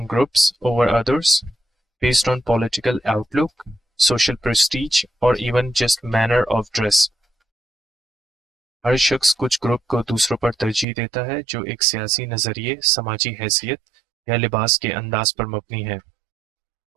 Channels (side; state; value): left; drops out; at 10.9 s